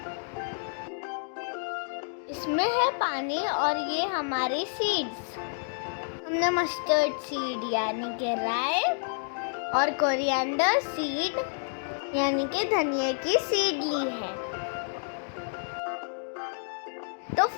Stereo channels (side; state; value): right; silent; digital silence